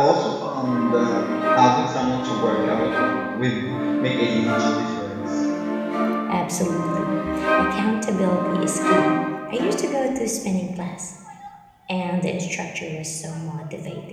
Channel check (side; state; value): both; identical; correlation 1.00